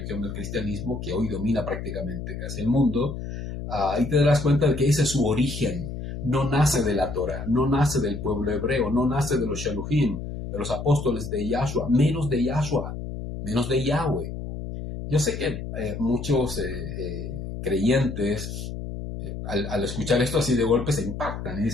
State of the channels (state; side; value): noise; left; hum, 7 dB below the sound